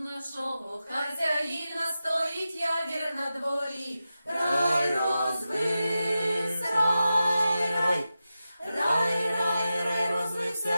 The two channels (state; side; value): inverted; both; correlation -0.92